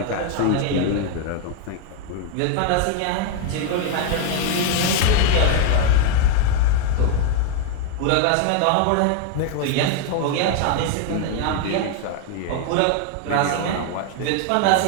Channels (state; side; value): different; both; correlation 0.01